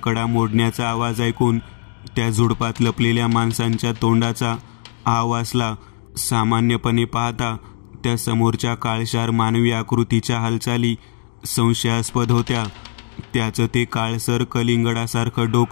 मोडण्याचा आवाज ऐकून त्या झुडपात लपलेल्या माणसांच्या तोंडाचा आवासला. सामान्यपणे पाहता त्या समोरच्या काळशार मानवी आकृतीच्या हालचाली संशयास्पद होत्या. त्याचं ते काळसर कलिंगडासारखं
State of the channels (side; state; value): right; silent; digital silence